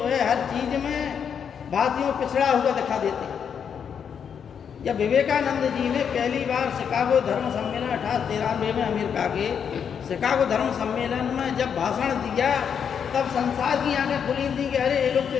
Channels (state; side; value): quieter; right; 7.5 dB